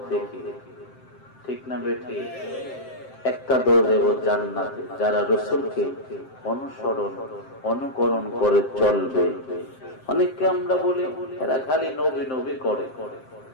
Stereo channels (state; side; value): late; right; 7.6 ms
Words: থেকে, ঠিক না বেঠি? একটা দল দেব জান্নাতে, যারা রাসূলকে অনুসরণ অনুকরণ করে চলবে। অনেককে আমরা বলি এরা খালি নবী নবী করে,